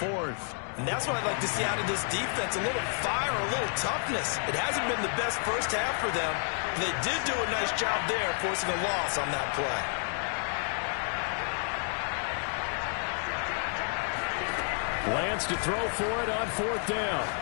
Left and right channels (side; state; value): right; silent; 58 dB below the other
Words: And that's what I'd like to see out of this defense. A little fire, a little toughness. It hasn't been the best first half for them. They did do a nice job there, forcing a loss on that play. Lance to throw for it on 4th down.